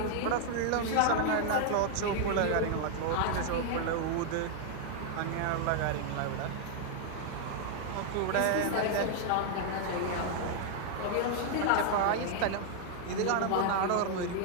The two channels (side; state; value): both; different; correlation 0.00